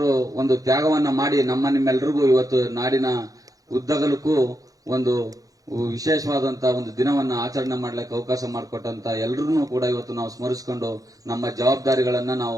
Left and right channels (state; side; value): late; left; 0.17 ms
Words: ಒಂದು ತ್ಯಾಗವನ್ನ ಮಾಡಿ ನಿಮ್ಮೆಲ್ಲರಿಗೂ ಇವತ್ತು ನಾಡಿನ ಉದ್ದಗಲಕ್ಕೂ ಒಂದು ವಿಶೇಷವಾದಂತಹ ಒಂದು ದಿನವನ್ನ ಆಚರಣೆ ಮಾಡ್ಲಿಕ್ಕೆ ಅವಕಾಶ ಮಾಡಿಕೊಟ್ಟಂತ ಎಲ್ಲರನ್ನೂ ಕೂಡ ಇವತ್ತು ನಾವು ಸ್ಮರಿಸಿಕೊಂಡು ನಮ್ಮ ಜವಾಬ್ದಾರಿಗಳನ್ನ